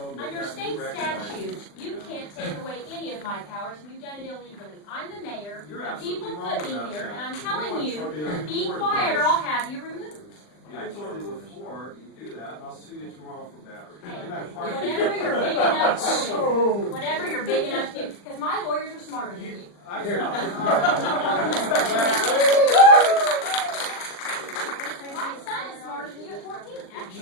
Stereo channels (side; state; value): right; late; 40 ms